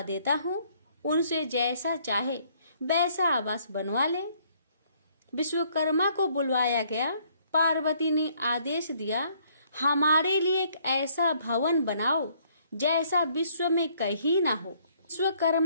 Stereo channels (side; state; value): both; inverted; correlation -0.65